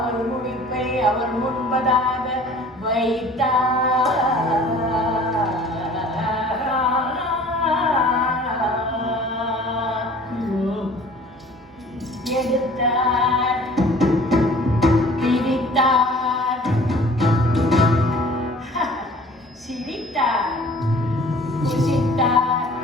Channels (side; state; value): both; normal; correlation 0.49